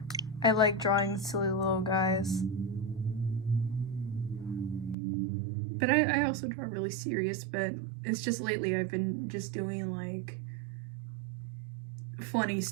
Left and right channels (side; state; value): left; drops out; at 5.0 s